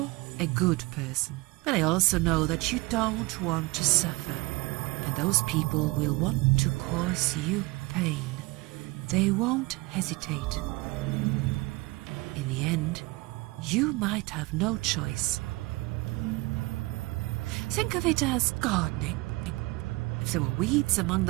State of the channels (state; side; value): quieter; left; 22.9 dB